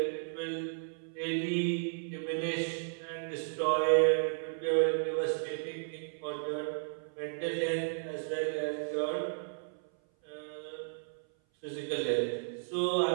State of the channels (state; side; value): silent; left; 55 dB below the other